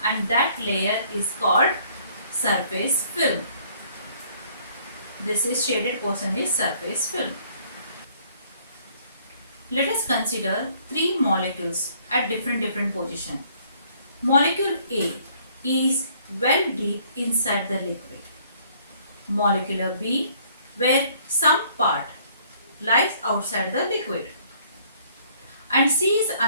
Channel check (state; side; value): inverted; both; correlation -0.61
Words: and that layer is called surface film. This is shaded portion is surface film. Let us consider three molecules at different position. Molecule A is well deep inside the liquid. Molecule B, where some part lies outside the liquid. And C is